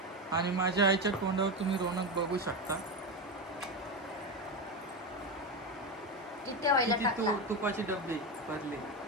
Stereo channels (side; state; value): both; normal; correlation 0.15